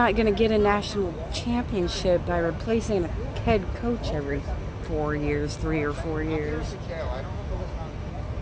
going to get a national championship by replacing a head coach every 4 years, 3 or 4 years.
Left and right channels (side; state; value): both; identical; correlation 1.00